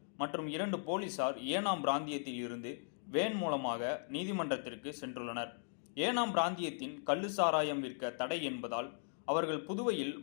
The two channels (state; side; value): silent; right; digital silence